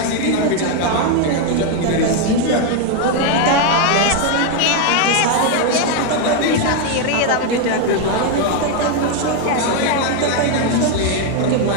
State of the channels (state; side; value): different; both; correlation 0.01